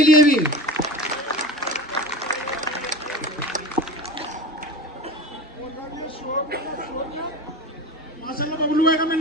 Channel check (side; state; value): both; normal; correlation 0.31